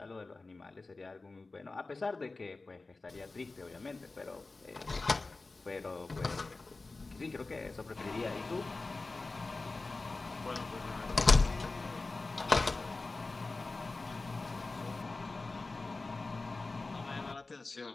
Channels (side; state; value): right; quieter; 3.5 dB